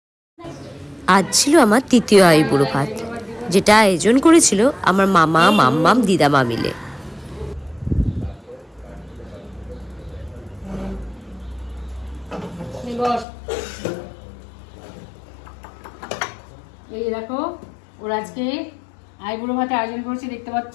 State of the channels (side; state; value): right; drops out; at 13.2 s